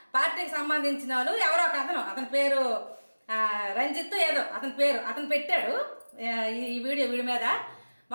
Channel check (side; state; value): both; inverted; correlation -1.00